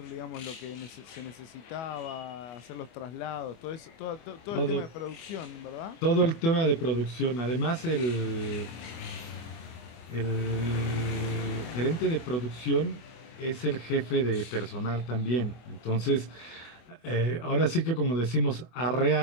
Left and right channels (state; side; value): late; right; 24 ms